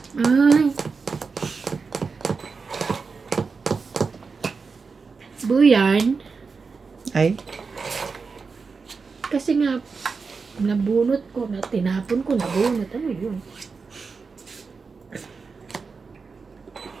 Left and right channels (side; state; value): left; quieter; 4.8 dB